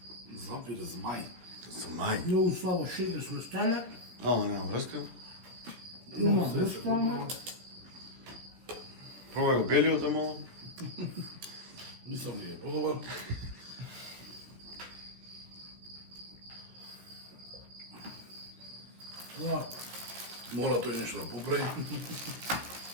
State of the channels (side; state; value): left; late; 16 ms